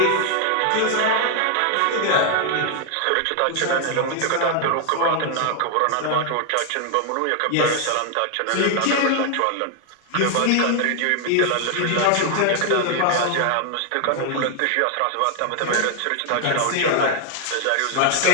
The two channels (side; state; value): both; different; correlation 0.00